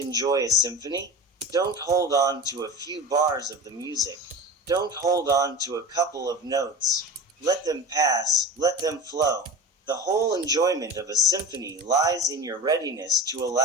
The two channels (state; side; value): normal; both; correlation 0.32